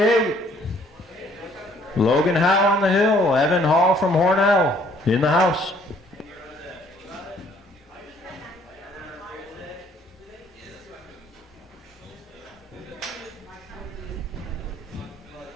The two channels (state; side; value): normal; both; correlation 0.61